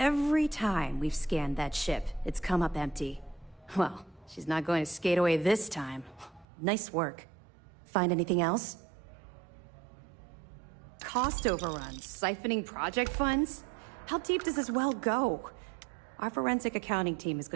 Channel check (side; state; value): left; drops out; at 6.5 s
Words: time we've scanned that ship, it's come up empty. Well, she's not going to skate away this time. Nice work. Find anything else? Cost overruns, siphoning project funds? How deep does this well go? Our forensic accounting team is